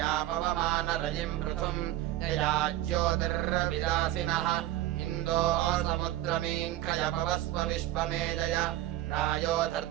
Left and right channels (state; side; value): quieter; left; 14.5 dB